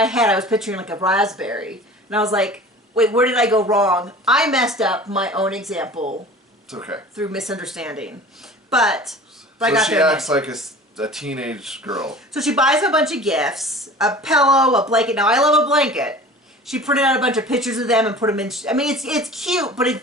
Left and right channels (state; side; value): normal; both; correlation 0.41